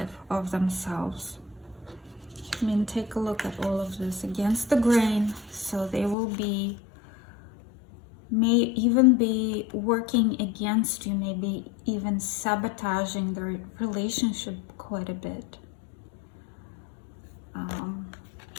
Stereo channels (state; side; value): drops out; right; at 6.2 s